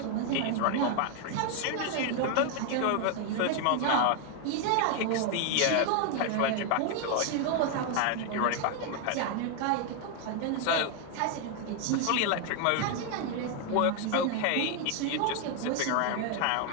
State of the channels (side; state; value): both; different; correlation 0.01